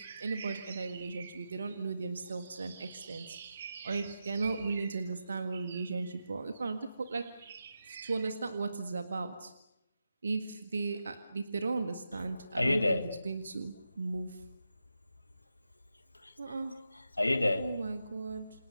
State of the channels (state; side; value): inverted; both; correlation -0.89